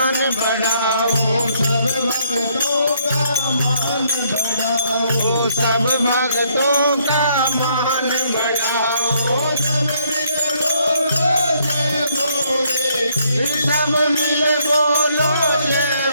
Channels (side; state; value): both; inverted; correlation -0.70